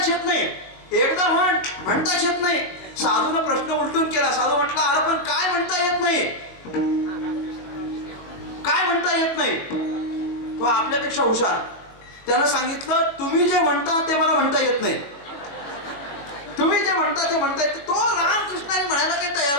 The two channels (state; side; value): late; right; 21 ms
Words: येत नाही, एकदा म्हण, म्हणताच येत नाही. साधूनं प्रश्न उलटून केला. साधू म्हटला, अरे पण काय म्हणता येत नाही, काय म्हणता येत नाही? तो आपल्यापेक्षा हुशार. त्यानं सांगितलं, तुम्ही जे म्हणता ते मला म्हणता येत नाही, तुम्ही जे म्हणता ते म्हणता येत. तो रामकृष्ण हरी म्हणायला काही तयार